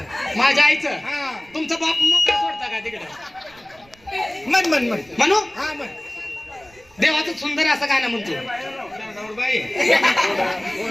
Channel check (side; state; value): right; noise; rumble, 28 dB below the sound